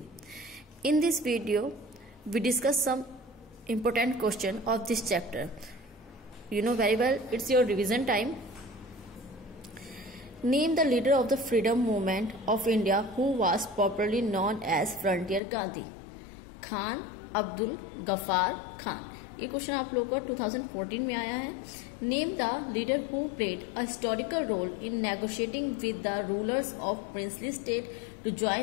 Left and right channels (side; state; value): right; drops out; at 15.4 s